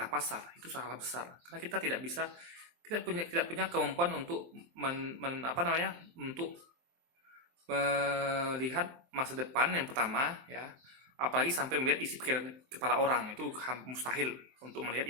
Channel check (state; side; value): late; left; 23 ms